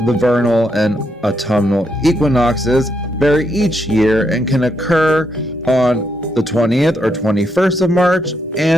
the vernal and autumnal equinoxes vary each year and can occur on the 20th or 21st of March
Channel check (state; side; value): normal; both; correlation 0.78